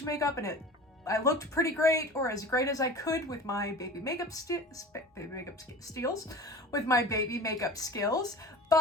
makeup, and I looked pretty great, or as great as I could with my baby makeup skills,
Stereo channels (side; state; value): both; normal; correlation 0.37